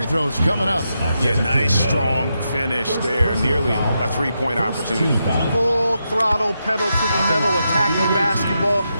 throws coming up. Yeah, nice, strong finish there. Nearly a three-point opportunity. Full throttle, pedal to the metal, attacking basketball.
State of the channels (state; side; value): inverted; both; correlation -0.85